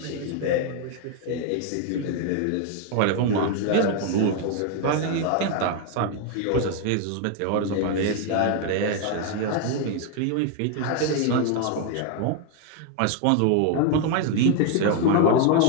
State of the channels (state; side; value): different; both; correlation 0.00